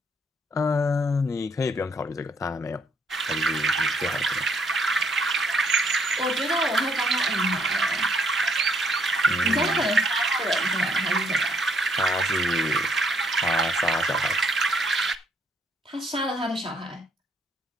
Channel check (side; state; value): both; normal; correlation 0.69